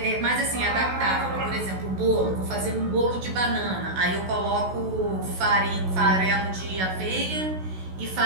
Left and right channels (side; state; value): left; late; 16 ms